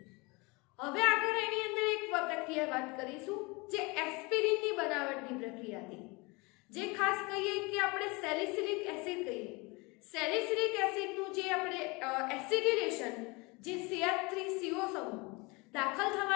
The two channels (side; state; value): right; quieter; 26.6 dB